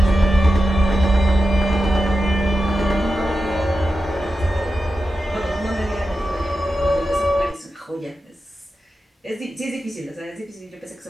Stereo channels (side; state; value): both; normal; correlation 0.91